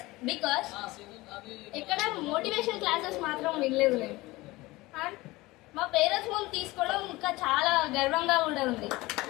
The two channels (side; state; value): right; quieter; 20.4 dB